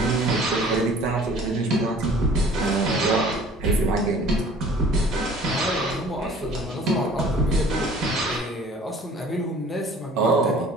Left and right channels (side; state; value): both; normal; correlation 0.50